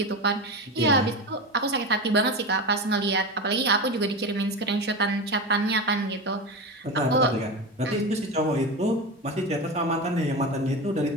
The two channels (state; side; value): normal; both; correlation 0.22